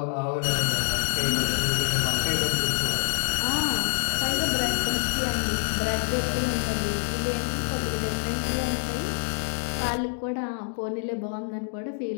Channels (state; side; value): silent; right; digital silence